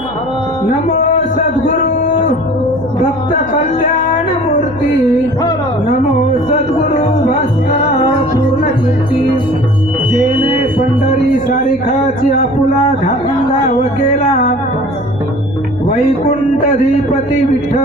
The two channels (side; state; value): left; noise; hum, 20 dB below the sound